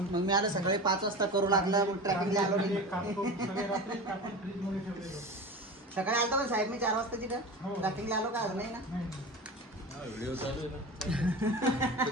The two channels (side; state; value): both; normal; correlation 0.30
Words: मग मी आलं सकाळी 5 वाजता करू लागला, मग ट्रॅकिंगला आलो. सगळे रात्री कापून फ्रीजमध्ये ठेवलेलं. सकाळी आलता पण साहेब मी 4 वाजता तिथं हो. ट्रॅकिंगला आलो का? नाही ना. व्हिडिओ चालू आहे ना.